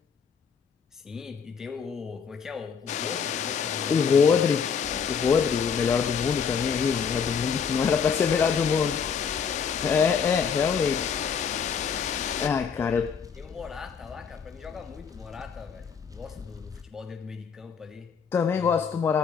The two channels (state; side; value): quieter; right; 6.5 dB